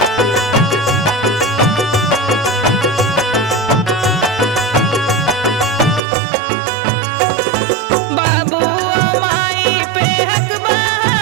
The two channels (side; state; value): left; drops out; at 6.0 s